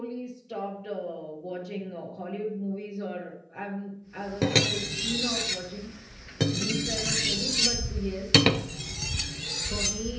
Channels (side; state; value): both; identical; correlation 1.00